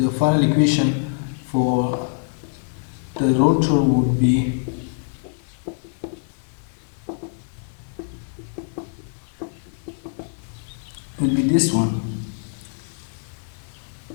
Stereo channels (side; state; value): right; silent; 63 dB below the other